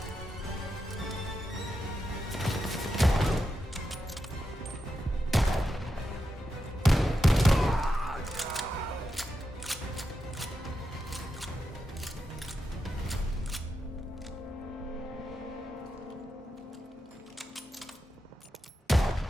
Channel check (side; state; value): both; normal; correlation 0.87